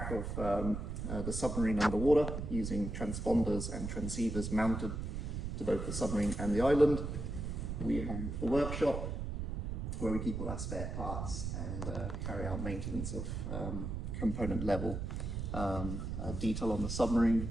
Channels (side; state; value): right; noise; rumble, 4 dB below the sound